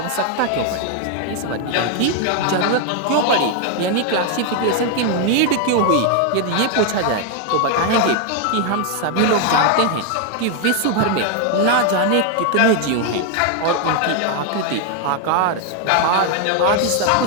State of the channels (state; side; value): different; both; correlation 0.00